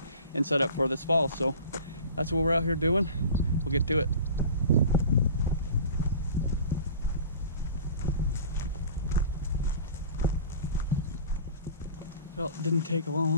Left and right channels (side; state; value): both; inverted; correlation -0.41